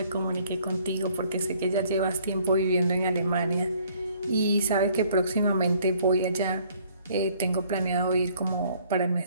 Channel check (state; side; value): inverted; both; correlation -0.60